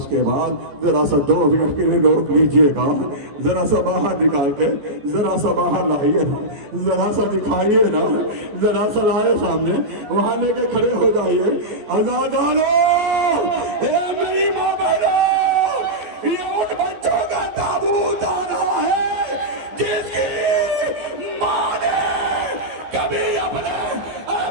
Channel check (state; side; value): late; left; 14 ms